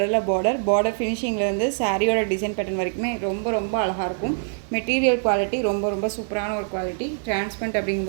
பார்டர் ஃபினிஷிங்லேருந்து சாரியோட டிசைன் பேட்டர்ன் வரைக்குமே ரொம்ப ரொம்ப அழகாக இருக்கும். மெட்டீரியல் குவாலிட்டி ரொம்ப ரொம்ப சூப்பரான ஒரு குவாலிட்டி. டிரான்ஸ்பரண்ட்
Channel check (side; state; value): left; silent; 63 dB below the other